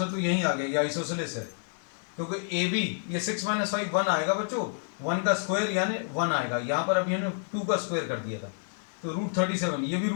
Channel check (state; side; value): silent; right; 59 dB below the other